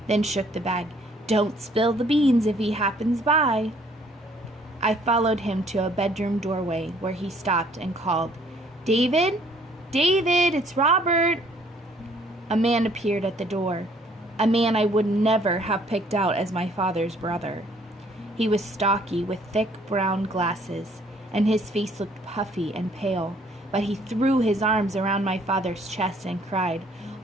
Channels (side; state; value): both; normal; correlation 0.61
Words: then shook the bag. Don't spill the beans if he happens by. I followed him to a bedroom doorway where he stopped and called, David? David, it's Robert. A man appeared at the door, a man I would never have picked out as my father's brother. He was stocky with thick brown glasses, and his face looked puffy and pale, but he threw his arms around my father's chest and cried,